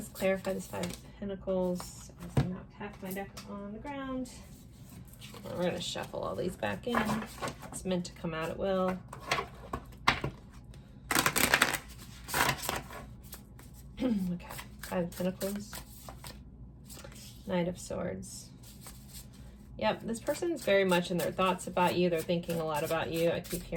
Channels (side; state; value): both; identical; correlation 1.00